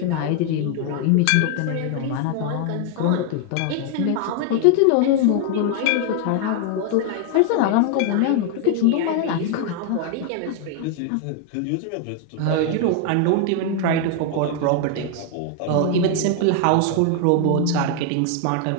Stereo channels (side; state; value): both; different; correlation 0.00